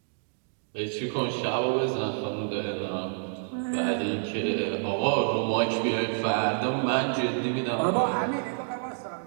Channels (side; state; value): left; silent; digital silence